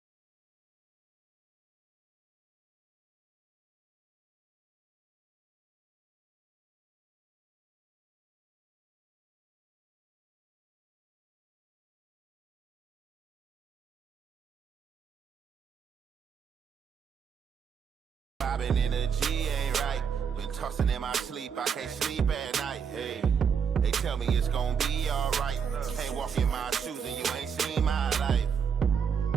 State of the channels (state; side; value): quieter; left; 7.0 dB